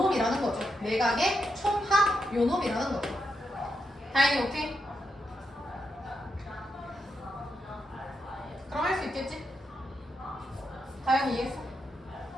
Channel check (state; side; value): normal; both; correlation 0.83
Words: 거죠. 내각의 총합 요놈이라는 거죠. 다행히 오케이? 그럼 할 수 있겠지? 다행히 이해했어?